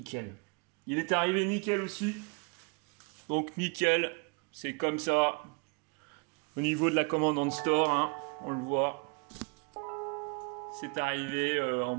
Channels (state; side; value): quieter; left; 33.5 dB